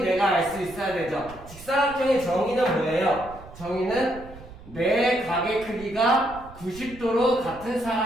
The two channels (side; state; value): right; noise; rumble, 18 dB below the sound